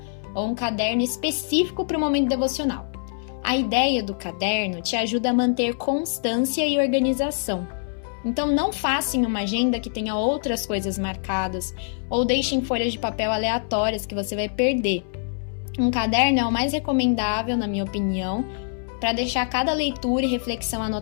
ou um caderno específico para o momento devocional. A ideia do caderno te ajuda a manter constância e organização. Então não faça em uma agenda que tenha outras coisas marcadas ou deixe em folhas de papel aleatórias que você vai perder. Um caderno é o mais recomendável, na minha opinião, para deixar cada leitura e reflexão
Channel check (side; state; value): right; silent; 60 dB below the other